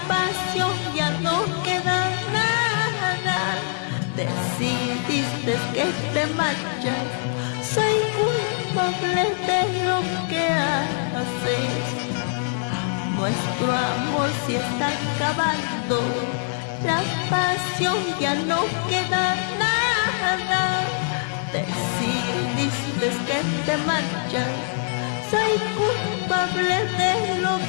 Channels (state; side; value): silent; right; digital silence